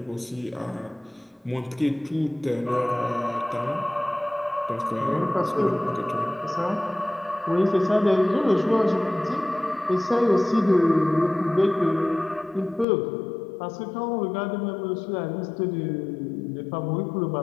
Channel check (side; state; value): right; drops out; at 12.9 s